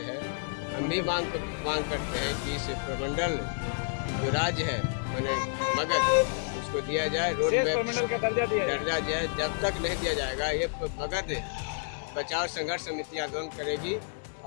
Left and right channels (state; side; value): silent; right; digital silence